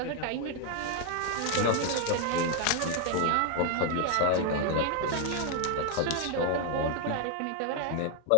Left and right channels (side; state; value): both; different; correlation 0.01